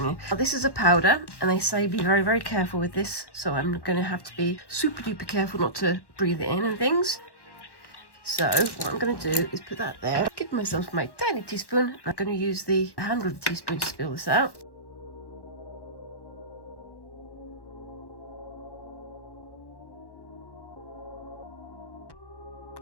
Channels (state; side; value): late; right; 1.1 ms